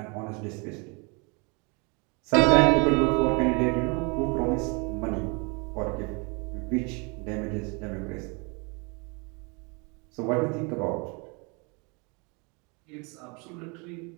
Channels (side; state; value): left; quieter; 31.5 dB